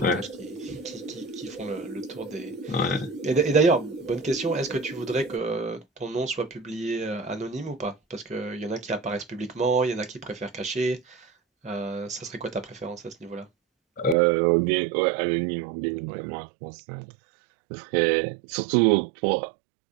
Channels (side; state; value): left; drops out; at 14.2 s